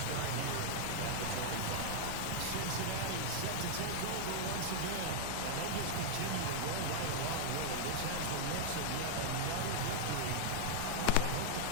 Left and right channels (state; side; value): different; both; correlation -0.01